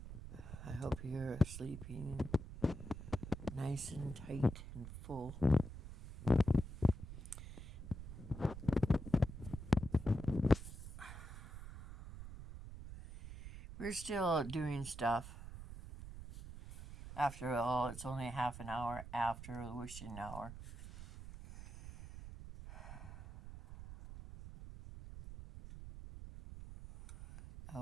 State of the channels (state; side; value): noise; right; rumble, 11 dB below the sound